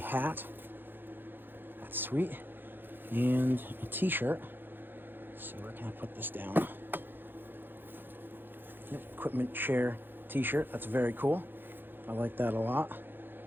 That's sweet. And a t-shirt. Let's see, where can I put this down? Yep, equipment share t-shirt. That's very cool. I like that a lot.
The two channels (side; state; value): left; late; 0.097 ms